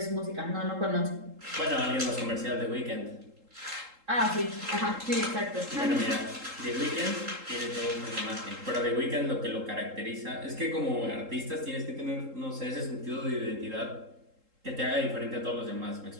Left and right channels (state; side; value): late; left; 3.7 ms